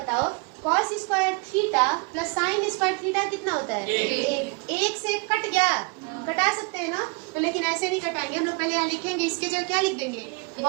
cos square theta plus sign square theta कितना होता है एक से कट गया, कटा सकते हैं ना, तो लेकिन ऐसे नहीं कटाएंगे हम लोग, पहले यहाँ लिखेंगे, इसके जगह क्या लिख देंगे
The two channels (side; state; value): left; quieter; 31.2 dB